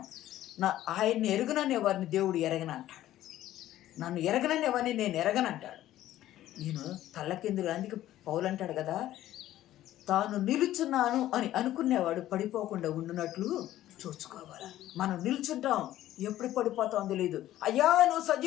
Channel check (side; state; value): right; quieter; 13.7 dB